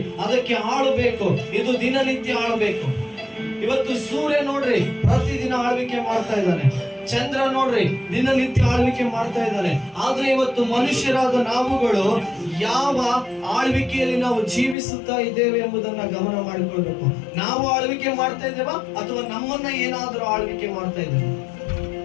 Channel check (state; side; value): drops out; right; at 14.8 s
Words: ಅದಕ್ಕೆ ಆಳಬೇಕು. ಇದು ದಿನನಿತ್ಯ ಆಳಬೇಕು. ಇವತ್ತು ಸೂರ್ಯ ನೋಡ್ರಿ, ಪ್ರತಿದಿನ ಆಳ್ವಿಕೆ ಮಾಡ್ತಾ ಇದ್ದಾನೆ. ಚಂದ್ರ ನೋಡ್ರಿ, ದಿನನಿತ್ಯ ಆಳ್ವಿಕೆ ಮಾಡ್ತಾ ಇದ್ದಾನೆ. ಆದ್ರೆ ಇವತ್ತು ಮನುಷ್ಯರಾದ ನಾವುಗಳು ಯಾವ ಆಳ್ವಿಕೆಯಲ್ಲಿ ನಾವು ಜೀವಿಸುತ್ತಾ ಇದ್ದೇವೆ ಎಂಬುದನ್ನ ಗಮನ ಮಾಡಿಕೊಳ್ಬೇಕು. ನಾವು ಆಳ್ವಿಕೆ ಮಾಡ್ತಾ ಇದ್ದೇವಾ ಅಥವಾ ನಮ್ಮನ್ನ ಏನಾದ್ರೂ ಆಳ್ವಿಕೆ ಮಾಡ್ತಾ ಇದ್ದೇವೆ?